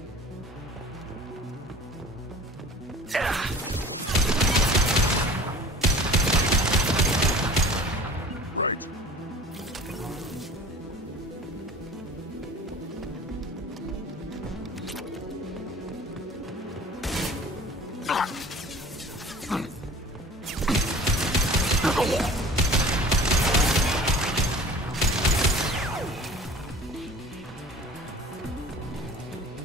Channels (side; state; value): both; normal; correlation 0.44